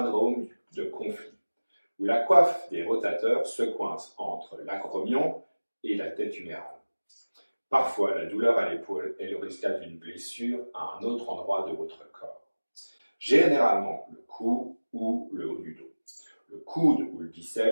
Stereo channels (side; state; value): both; inverted; correlation -1.00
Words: de conflit, où la coiffe des rotateurs se coince entre l'acromion et la tête humérale. Parfois, la douleur à l'épaule est le résultat d'une blessure à un autre endroit de votre corps. Généralement, le cou ou le haut du dos. Le coude ou le